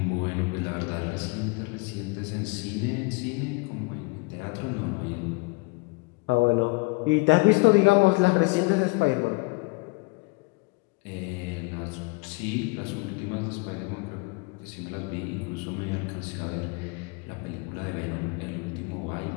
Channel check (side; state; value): right; quieter; 27.2 dB